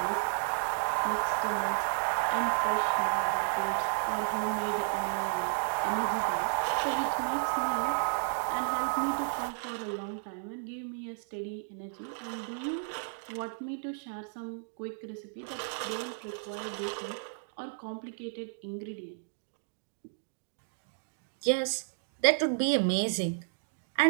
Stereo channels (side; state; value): left; silent; digital silence